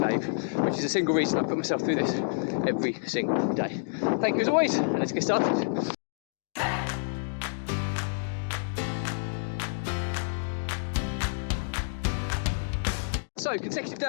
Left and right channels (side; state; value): right; silent; digital silence